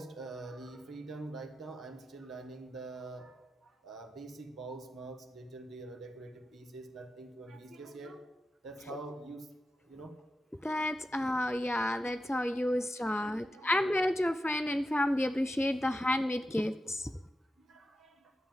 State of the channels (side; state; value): both; normal; correlation 0.90